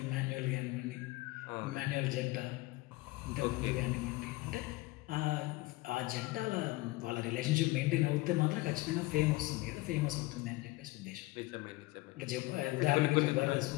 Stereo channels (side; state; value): right; quieter; 20.8 dB